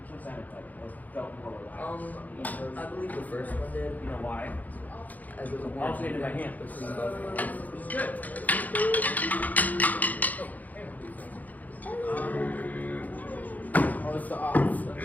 one sounded better? What felt more relaxed? I believe the first one did. You know why? As it was more Alternated by hand. Which is good. Oh, it's the off.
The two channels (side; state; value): right; late; 0.080 ms